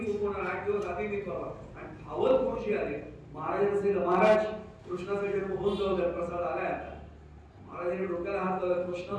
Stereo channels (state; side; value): identical; both; correlation 1.00